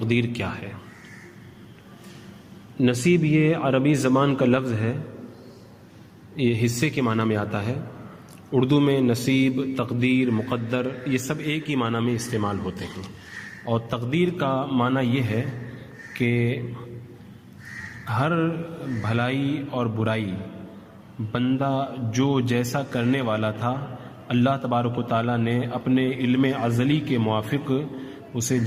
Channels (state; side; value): identical; both; correlation 1.00